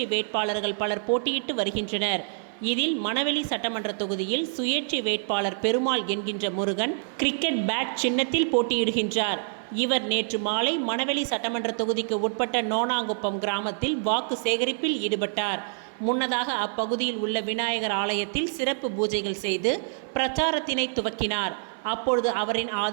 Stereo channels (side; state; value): left; silent; 56 dB below the other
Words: வேட்பாளர்கள் பலர் போட்டியிட்டு வருகின்றனர். இதில் மணவெளி சட்டமன்ற தொகுதியில் சுயேட்சை வேட்பாளர் பெருமாள் என்கின்ற முருகன் கிரிக்கெட் பேட் சின்னத்தில் போட்டியிடுகின்றார். இவர் நேற்று மாலை மணவெளி சட்டமன்ற தொகுதிக்கு உட்பட்ட நோனாங்குப்பம் கிராமத்தில் வாக்கு சேகரிப்பில் ஈடுபட்டார். முன்னதாக அப்பகுதியில் உள்ள விநாயகர் ஆலயத்தில் சிறப்பு பூஜைகள் செய்து பிரச்சாரத்தினை துவக்கினார். அப்பொழுது அவரின்